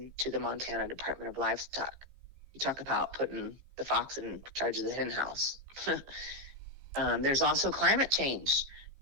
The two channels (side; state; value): left; late; 15 ms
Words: to the Montana Department of Livestock. You talk about putting the fox in charge of the hen house. There's also climate change,